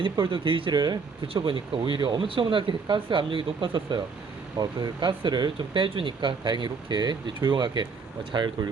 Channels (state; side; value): quieter; left; 5.0 dB